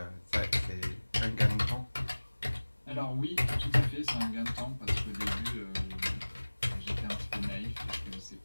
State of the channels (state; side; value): inverted; both; correlation -1.00